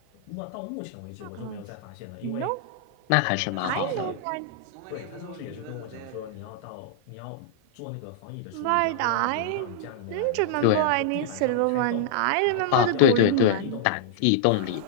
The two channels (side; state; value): both; different; correlation -0.01